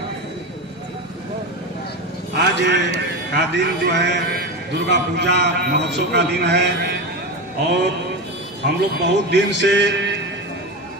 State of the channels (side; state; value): both; normal; correlation 0.20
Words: आज का दिन जो है दुर्गा पूजा महोत्सव का दिन है और हम लोग बहुत दिन से